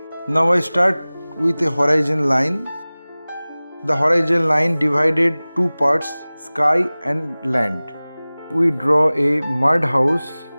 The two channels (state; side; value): inverted; both; correlation -0.99